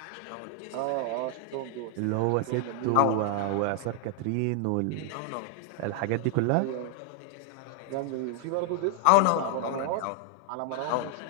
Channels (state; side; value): different; both; correlation 0.00